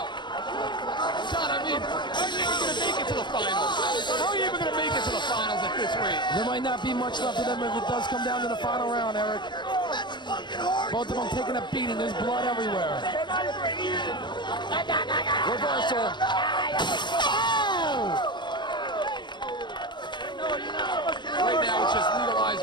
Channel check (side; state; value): right; late; 0.22 ms